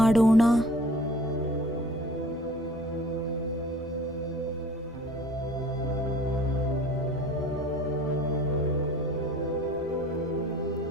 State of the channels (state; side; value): normal; both; correlation 0.48